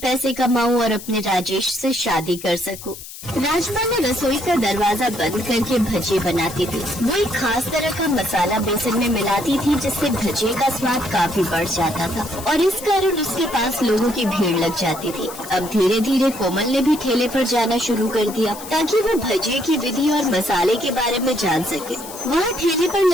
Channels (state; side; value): noise; left; hiss, 14 dB below the sound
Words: कमाऊं और अपने राजेश से शादी कर सकूं। राजबाला रसोई का दरवाजा बंद करके भजिए बनाती थी। वो एक खास तरह का मसाला बेसन में मिलाती थी, जिससे भजिए का स्वाद काफी बढ़ जाता था और इस कारण उसके पास लोगों की भीड़ लग जाती थी। अब धीरे धीरे कोमल ने भी ठेले पर जाना शुरू कर दिया, ताकि वो भजिए की विधि और मसाले के बारे में जान सके। वहाँ ठेले पर